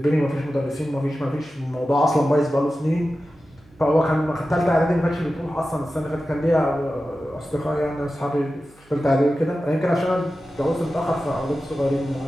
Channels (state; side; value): noise; right; hum, 29 dB below the sound